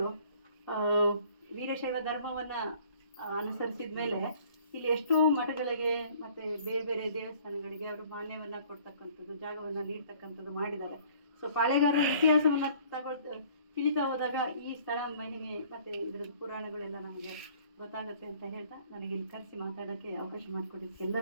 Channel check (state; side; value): inverted; both; correlation -0.55